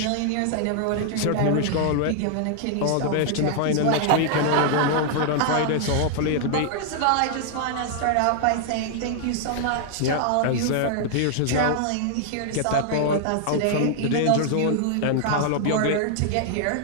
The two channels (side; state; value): both; different; correlation -0.01